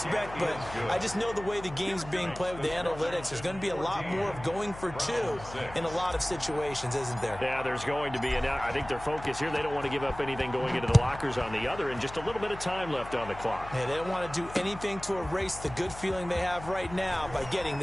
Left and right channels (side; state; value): left; noise; hum, 14 dB below the sound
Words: But I just know the way the game's being played with the analytics, there's going to be a lot more of going for 2 in a lot of situations, isn't there? Yeah, there's going to be. And I think their focus here, they don't want to give up anything going into the lockers on the other, and just a little bit of time left on the clock. Yeah, they don't want to do anything to erase the good feeling they have right now by getting